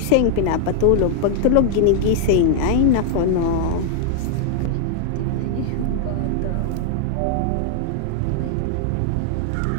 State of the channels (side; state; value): both; different; correlation 0.00